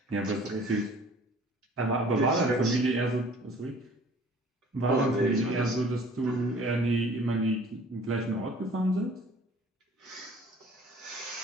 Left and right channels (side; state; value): both; normal; correlation 0.51